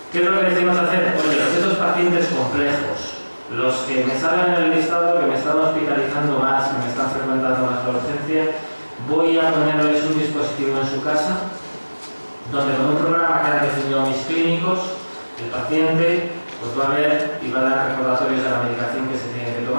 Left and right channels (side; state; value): both; inverted; correlation -1.00